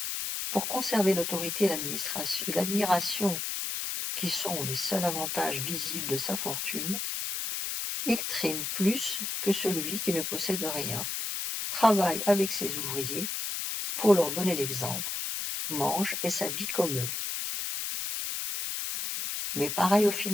Pour conserver l'autorité et l'admiration qui sont les seuls avantages visibles de sa fortune, il trime plus que celui qui ne possède rien, travaille avec ses ouvriers pour leur donner l'exemple, mange et s'habille comme eux. Mais pareil aux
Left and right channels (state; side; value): noise; left; hiss, 3 dB below the sound